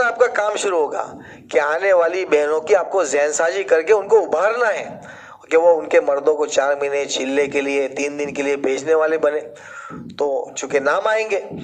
آپ کا کام شروع ہوگا کہ آنے والی بہنوں کی آپ کو ذہن سازی کر کے ان کو ابھارنا ہے کہ وہ ان کے مردوں کو 4 مہینے چلنے کے لیے 3 دن کے لیے بھیجنے والے بنے۔ تو چونکہ نام آئیں گے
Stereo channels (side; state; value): both; identical; correlation 1.00